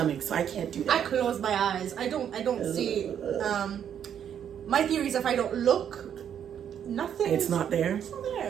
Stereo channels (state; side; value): quieter; left; 9.0 dB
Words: so I can't do that. I close my eyes. I don't see. My theory is if I don't look, nothing. It's not there. It's not